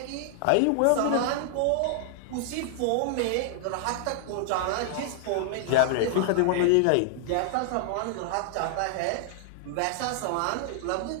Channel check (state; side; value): different; both; correlation -0.01